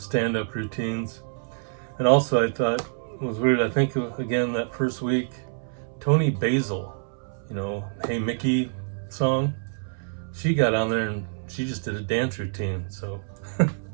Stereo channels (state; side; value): silent; left; 61 dB below the other